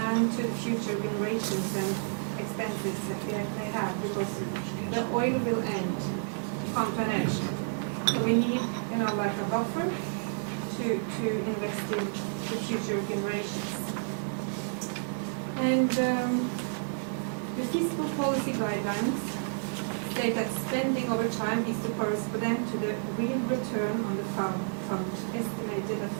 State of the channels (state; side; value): silent; left; digital silence